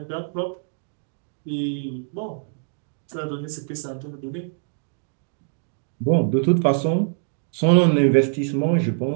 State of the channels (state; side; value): silent; left; 63 dB below the other